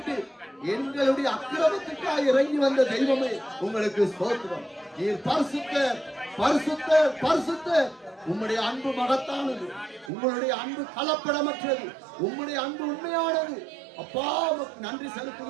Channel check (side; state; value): left; drops out; at 10.1 s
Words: எங்களுடைய அக்கிரமத்துக்காக இறங்கி வந்த தெய்வமே உங்களுக்கு ஸ்தோத்திரம். நீர் பரிசுத்தர், பரிசுத்தர், பரிசுத்தர். உம்முடைய அன்பு மகத்தானது, உங்களுடைய அன்பு கலப்படமற்றது, உம்முடைய அன்பு உண்மையானது. அப்பா உமக்கு நன்றி